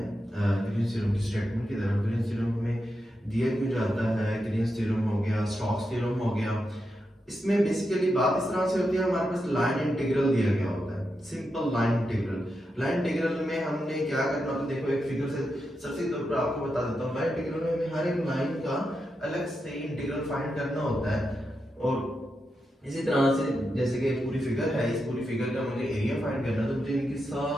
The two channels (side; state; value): both; normal; correlation 0.86